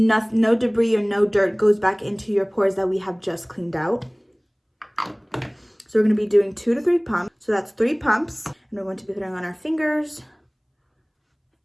debris or no dirt goes back into your pores that we have just cleaned out. So we're going to be doing 2 to 3 pumps. So that's 3 pumps, and we're going to be putting on our fingers.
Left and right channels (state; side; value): identical; both; correlation 1.00